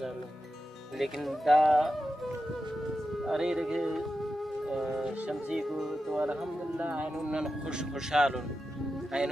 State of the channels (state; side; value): normal; both; correlation 0.90